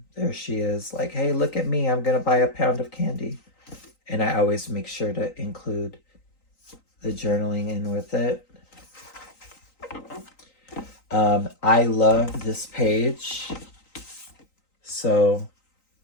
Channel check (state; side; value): late; right; 3.9 ms